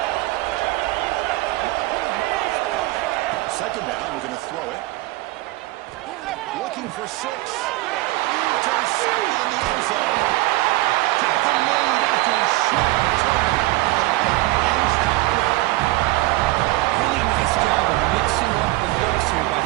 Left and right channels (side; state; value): left; quieter; 20.2 dB